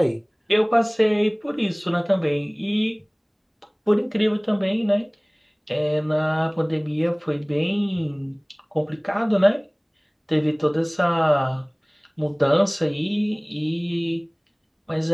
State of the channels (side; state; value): both; identical; correlation 1.00